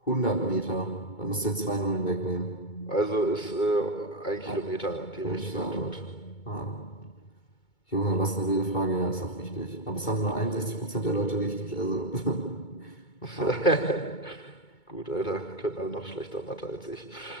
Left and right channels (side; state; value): right; late; 2.2 ms